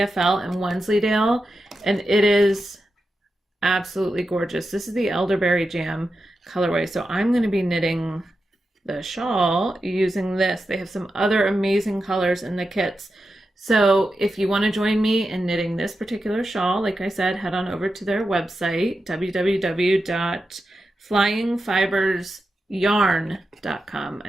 and Wensleydale, and it is absolutely gorgeous. This is the Elderberry Jam colorway. So I'm going to be knitting the shawl using this. They have some other amazing colors in the kits. So if you want to join me in knitting this particular shawl, like I said, head on over to their website, www.flyingfibresyarn.com. I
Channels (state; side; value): normal; both; correlation 0.89